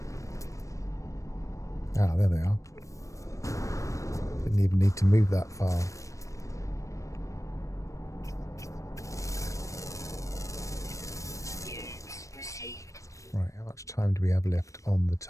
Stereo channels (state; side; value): late; right; 0.15 ms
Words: Ah, there they are. Didn't even need to move that far. Right, how much time do we have left on the